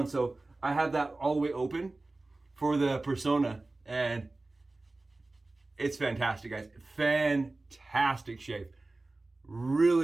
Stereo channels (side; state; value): left; quieter; 3.1 dB